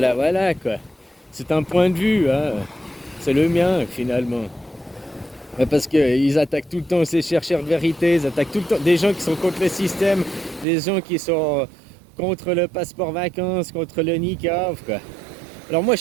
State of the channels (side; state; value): left; drops out; at 10.7 s